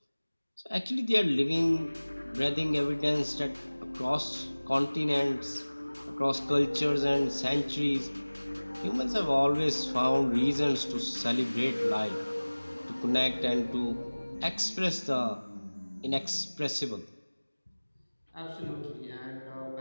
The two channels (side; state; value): both; inverted; correlation -1.00